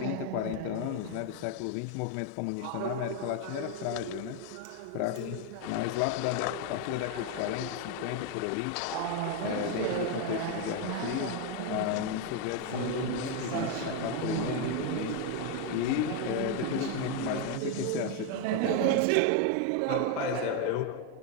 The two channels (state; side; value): different; both; correlation 0.01